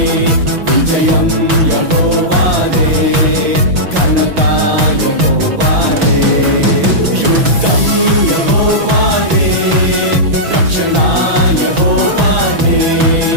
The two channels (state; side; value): late; left; 6.0 ms